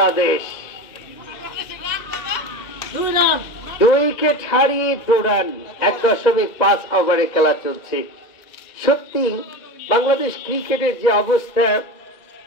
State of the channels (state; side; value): late; right; 1.9 ms